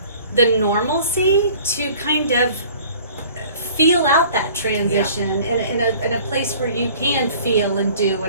the normalcy to kind of feel out that transition in a place where you can feel and do,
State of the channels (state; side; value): inverted; both; correlation -0.49